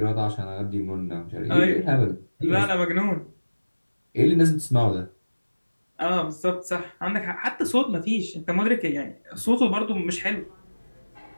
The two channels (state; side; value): inverted; both; correlation -1.00